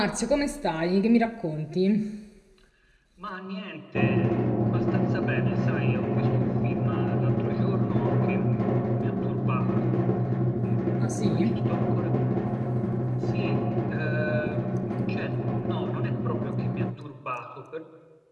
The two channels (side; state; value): both; identical; correlation 1.00